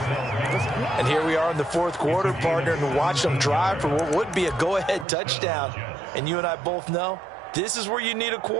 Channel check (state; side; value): drops out; left; at 5.1 s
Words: And here we are in the 4th quarter, partner, and watch them drive for what would be a go-ahead touchdown. And you and I both know this is where you need a